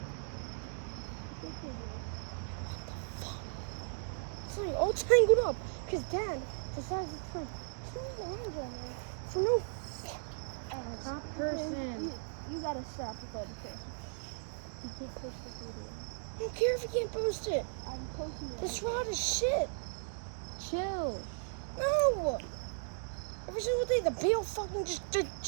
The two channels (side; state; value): left; silent; digital silence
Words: Sorry, all tangled up because Dad decided to put 2 lines on there. So no. Top person. You gotta stop with all the person. You can't post this video. I don't care if you can't post it. I'm posting it. This rod is shit. Chill. No. Every single day the bill fucking just